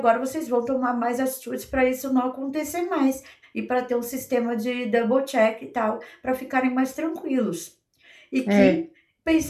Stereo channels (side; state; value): both; identical; correlation 1.00